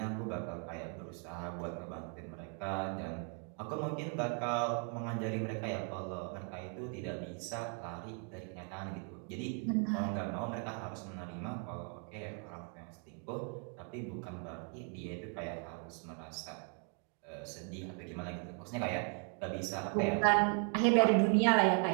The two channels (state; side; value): quieter; left; 39.7 dB